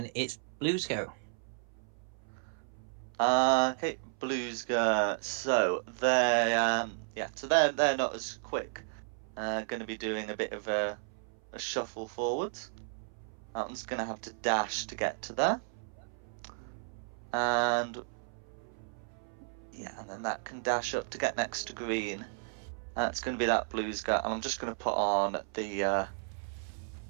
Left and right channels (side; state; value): left; silent; 55 dB below the other